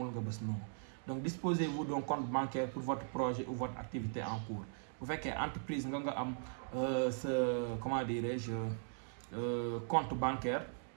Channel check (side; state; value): left; silent; digital silence